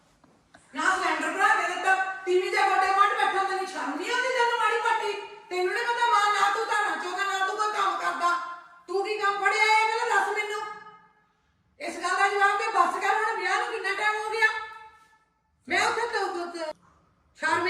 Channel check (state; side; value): identical; both; correlation 1.00